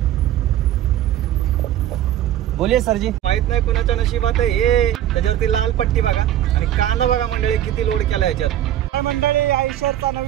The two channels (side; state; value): left; quieter; 12.0 dB